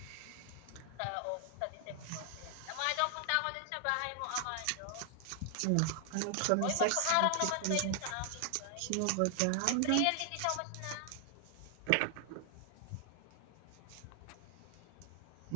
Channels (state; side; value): different; both; correlation 0.00